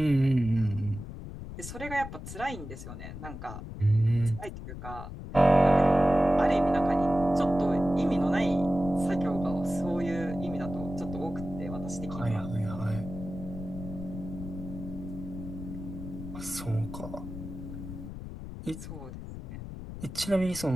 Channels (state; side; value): noise; left; rumble, 10 dB below the sound